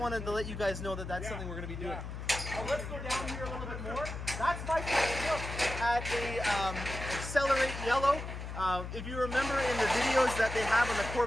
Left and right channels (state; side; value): noise; left; hum, 7 dB below the sound